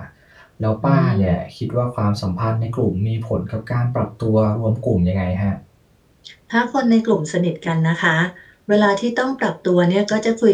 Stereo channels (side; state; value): both; identical; correlation 1.00